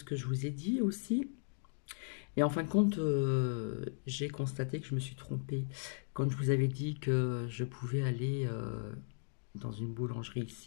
que je vous ai dit aussi. Et en fin de compte, j'ai constaté que je me suis trompée. Quand je vous avais dit que je pouvais aller dans une boulangerie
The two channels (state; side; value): silent; right; digital silence